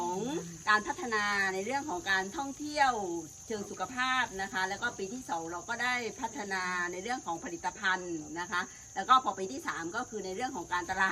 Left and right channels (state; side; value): identical; both; correlation 1.00